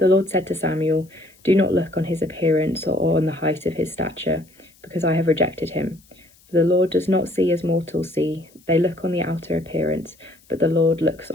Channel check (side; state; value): left; noise; hiss, 30 dB below the sound